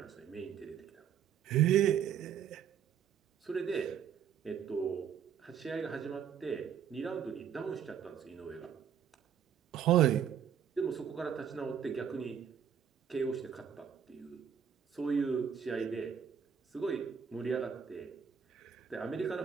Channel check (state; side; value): quieter; left; 8.2 dB